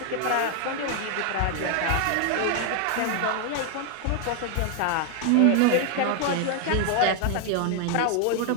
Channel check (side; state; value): both; different; correlation 0.00